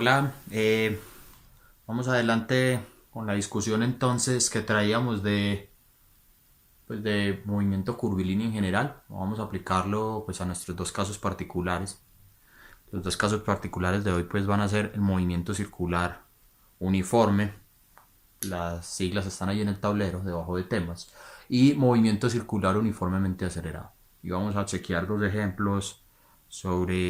vamos adelante con la discusión entonces que traíamos de movimiento curvilíneo en general. Vamos a aplicarlo pues a nuestros dos casos particulares. Los dos casos particulares de hoy pues van a ser el movimiento circular uniforme, las siglas están ahí en el tablero debajo de temas, y movimiento circular uniformemente acelerado. Y vamos a chequear dos ejemplos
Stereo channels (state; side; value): identical; both; correlation 1.00